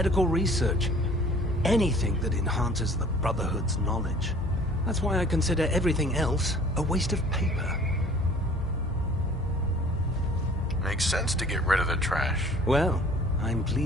research. Anything that enhances the Brotherhood's knowledge. That's why I consider everything else a waste of paper. Makes sense to get rid of the trash. Well, I'm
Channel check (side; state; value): both; normal; correlation 0.50